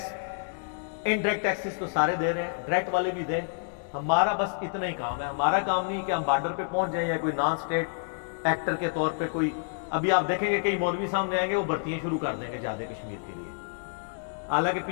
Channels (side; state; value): right; silent; digital silence